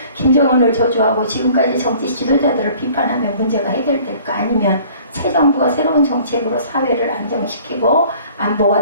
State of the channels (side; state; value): both; inverted; correlation -0.52